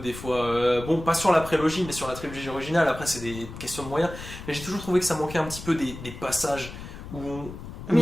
fois. Bon, pas sur la prélogie, mais sur la trilogie originale. Après, c'est des questions de moyens. Mais j'ai toujours trouvé que ça manquait un petit peu des passages où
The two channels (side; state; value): left; noise; rumble, 12 dB below the sound